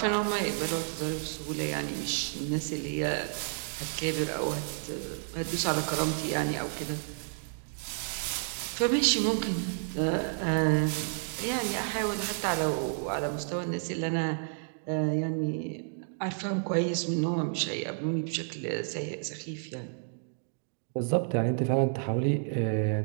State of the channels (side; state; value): left; silent; digital silence